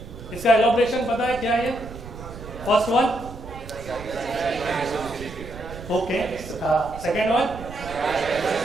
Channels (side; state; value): right; noise; rumble, 13 dB below the sound